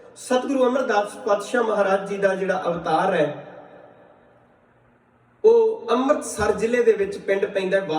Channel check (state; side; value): identical; both; correlation 1.00